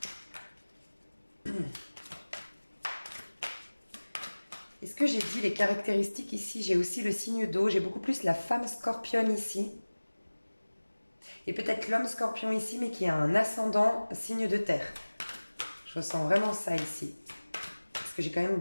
que j'ai dit les caractéristiques ici? J'ai aussi le signe d'eau, j'ai beaucoup plus la femme scorpion ici. Et peut-être l'homme scorpion ici, mais qui a un ascendant signe de terre. Je ressens vraiment ça ici. Parce que j'ai quand même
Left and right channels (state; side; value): inverted; both; correlation -1.00